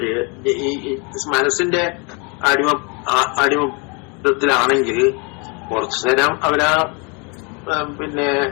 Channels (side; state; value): right; quieter; 32.3 dB